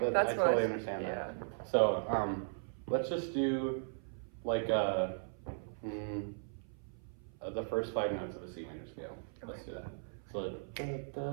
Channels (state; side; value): silent; left; 53 dB below the other